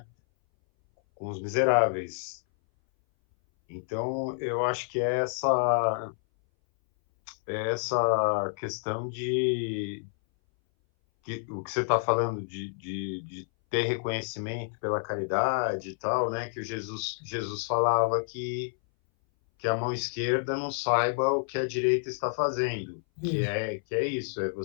Com os miseráveis. Então, eu acho que é essa questão o que você está falando de ter reconhecimento pela caridade e tal, né? Que o Jesus falava que a mão esquerda não saiba o que a direita está fazendo, que é isso, é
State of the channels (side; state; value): right; silent; 59 dB below the other